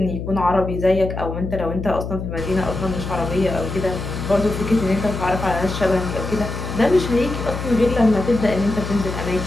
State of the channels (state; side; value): noise; left; hum, 6 dB below the sound